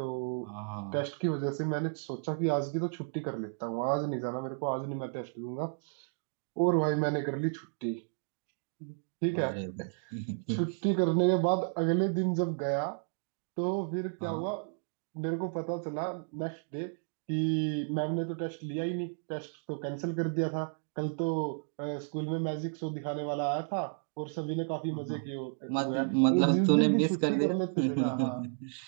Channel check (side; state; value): left; silent; digital silence